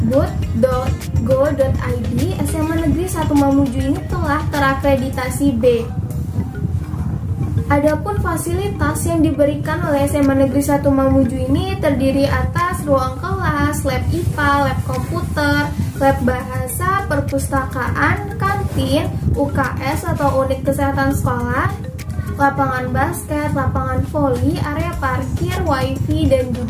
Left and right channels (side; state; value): both; identical; correlation 1.00